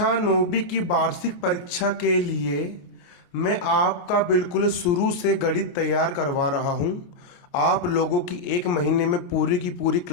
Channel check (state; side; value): late; right; 28 ms